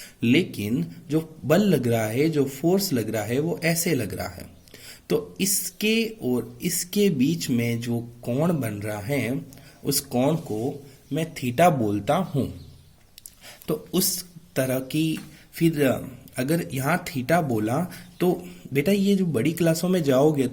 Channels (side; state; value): both; identical; correlation 1.00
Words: लेकिन जो बल लग रहा है, जो फोर्स लग रहा है, वो ऐसे लग रहा है। तो इसके और इसके बीच में जो कोण बन रहा है, उस कोण को मैं थीटा बोलता हूं। तो उस तरह की, फिर अगर यहाँ थीटा बोला तो बेटा ये जो बड़ी क्लासों में जाओगे